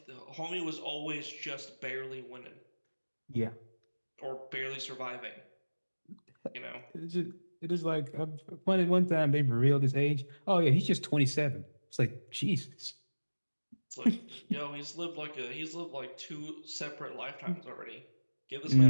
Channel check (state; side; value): inverted; both; correlation -1.00